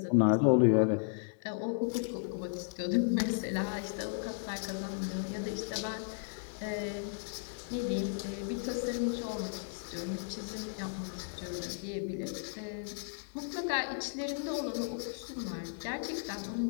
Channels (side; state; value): right; silent; digital silence